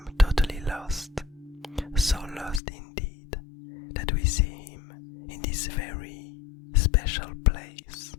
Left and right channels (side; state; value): right; drops out; at 2.6 s